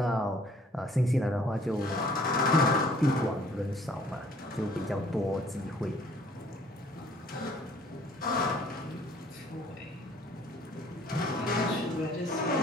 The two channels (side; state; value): both; normal; correlation 0.58